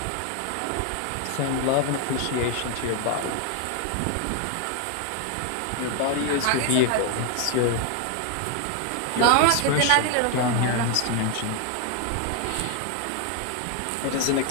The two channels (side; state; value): both; different; correlation 0.00